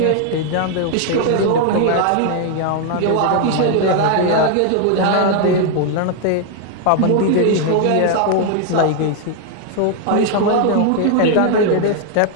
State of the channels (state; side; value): different; both; correlation 0.00